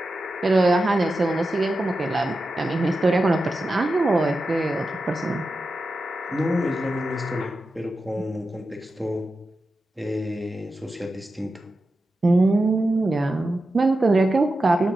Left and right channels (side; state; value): both; normal; correlation 0.91